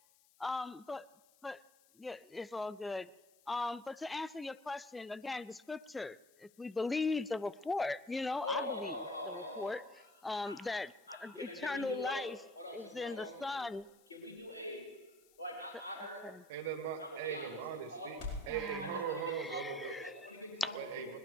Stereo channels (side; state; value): left; noise; hiss, 28 dB below the sound